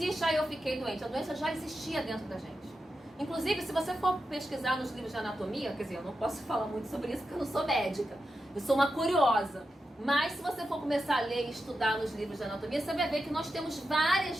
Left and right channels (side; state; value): both; normal; correlation 0.89